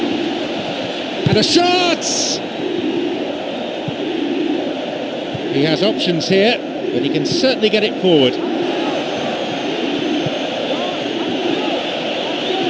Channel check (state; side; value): identical; both; correlation 1.00